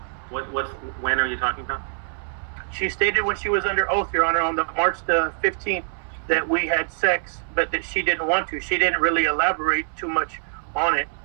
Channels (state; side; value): silent; left; digital silence